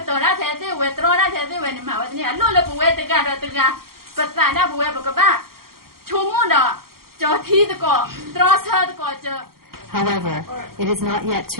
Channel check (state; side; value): late; left; 0.93 ms